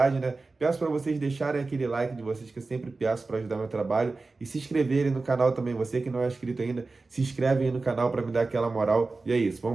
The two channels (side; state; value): left; quieter; 3.7 dB